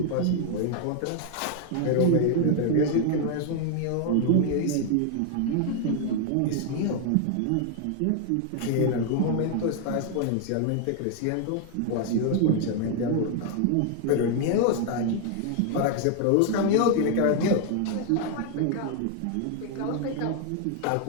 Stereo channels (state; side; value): different; both; correlation 0.00